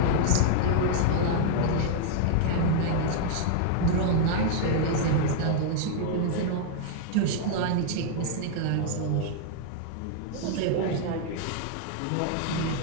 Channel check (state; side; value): different; both; correlation -0.01